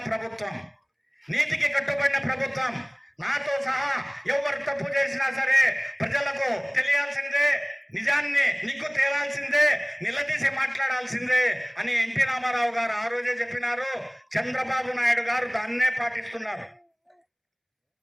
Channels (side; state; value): both; identical; correlation 1.00